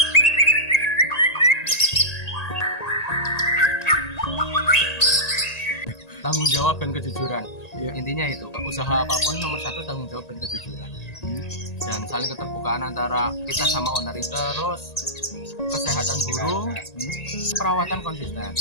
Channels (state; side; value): late; right; 1.9 ms